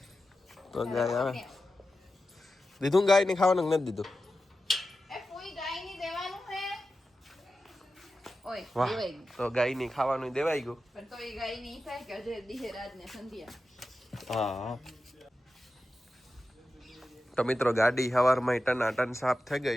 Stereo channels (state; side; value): normal; both; correlation 0.92